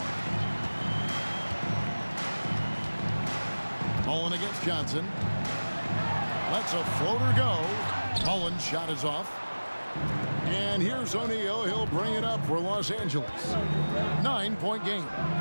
Mullen against Johnson. Lets a floater go. Mullen's shot is off. And here's O'Neal. He'll bring it up for Los Angeles. 9-point game.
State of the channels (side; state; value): both; inverted; correlation -1.00